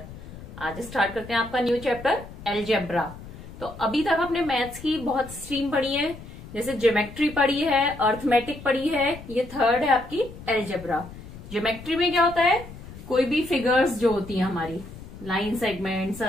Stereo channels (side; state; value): left; noise; rumble, 15 dB below the sound